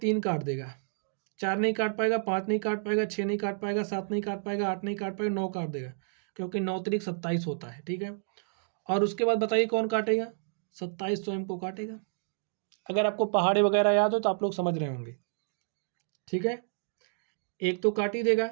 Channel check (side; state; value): left; silent; digital silence